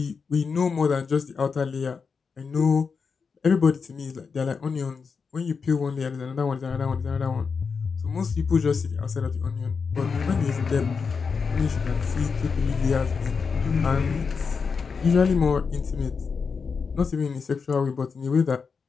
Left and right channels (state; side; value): quieter; right; 5.4 dB